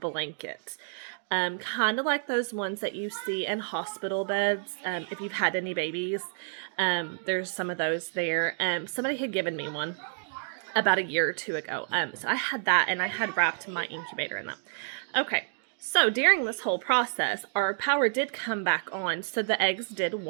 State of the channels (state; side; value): silent; left; digital silence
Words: Kind of like those ones that you see in hospital beds. If you've had any babies, there's some of those there. Somebody had given me one about a year or two ago. So I had that and I had wrapped my incubator in that. Okay. So during this whole process, our power did come back on, so the eggs did